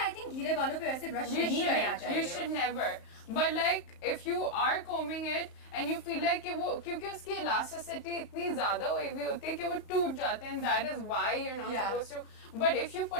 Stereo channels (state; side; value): late; right; 35 ms